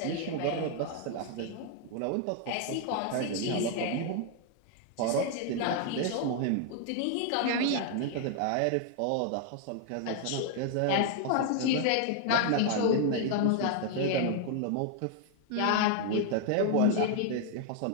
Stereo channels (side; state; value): both; different; correlation 0.00